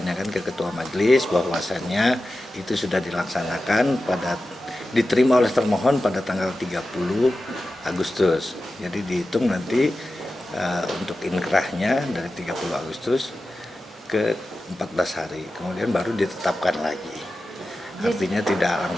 ke ketua majelis bahwasannya itu sudah dilaksanakan diterima oleh termohon pada tanggal 30 Agustus. Jadi dihitung nanti untuk inkrahnya dari 30 Agustus ke 14 hari. Kemudian baru ditetapkan lagi. Artinya tidak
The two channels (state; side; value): normal; both; correlation 0.93